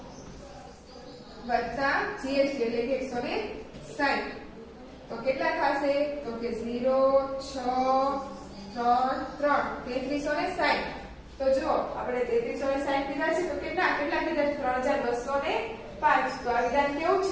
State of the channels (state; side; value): identical; both; correlation 1.00